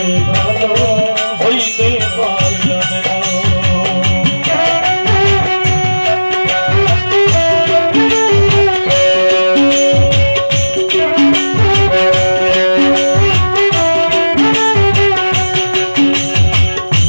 ভালো হইতে পারলাম না।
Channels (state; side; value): inverted; both; correlation -1.00